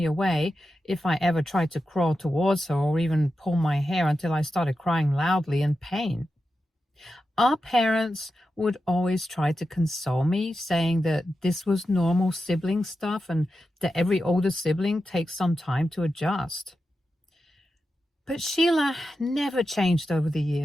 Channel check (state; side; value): normal; both; correlation 0.90